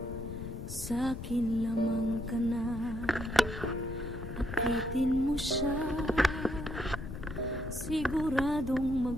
sa'kin lamang ka na. Akitin mo siya, siguradong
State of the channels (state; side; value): noise; left; rumble, 8 dB below the sound